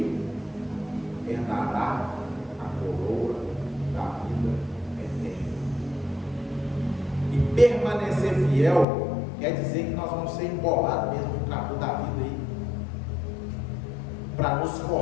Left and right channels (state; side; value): drops out; right; at 8.8 s